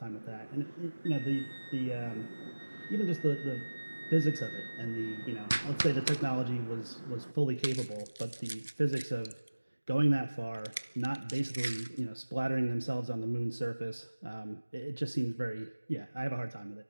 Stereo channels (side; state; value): both; inverted; correlation -1.00